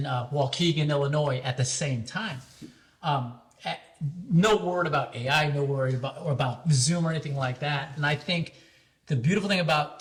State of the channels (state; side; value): identical; both; correlation 1.00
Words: Illinois at the same time. No word about AI, no word about Zoom or anything like that. And I think the beautiful thing about